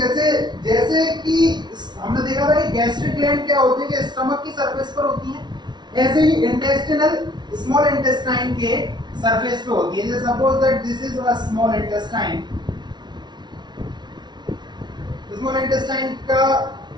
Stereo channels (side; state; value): left; late; 0.20 ms